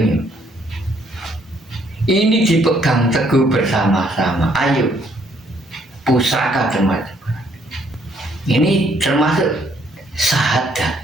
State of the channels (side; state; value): both; normal; correlation 0.68